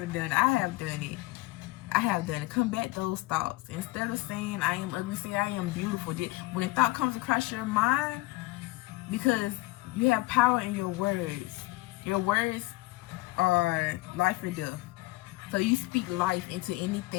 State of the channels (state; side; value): quieter; right; 20.9 dB